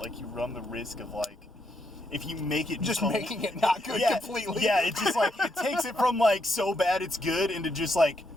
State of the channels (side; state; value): both; normal; correlation 0.78